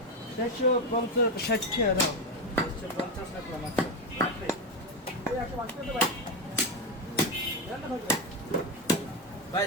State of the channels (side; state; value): both; normal; correlation 0.10